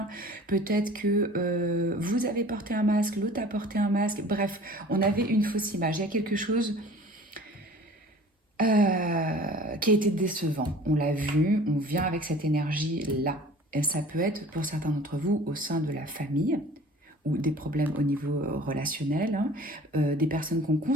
Peut-être que vous avez porté un masque, l'autre a porté un masque. Bref, on avait une fausse image. Il y a quelque chose qui a été décevant. On l'a vu, on vient avec cette énergie-là. Et ça peut être pour certains d'entre vous au sein de la famille ou des problèmes au niveau relationnel, hein, des personnes qu'on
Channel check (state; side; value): normal; both; correlation 0.46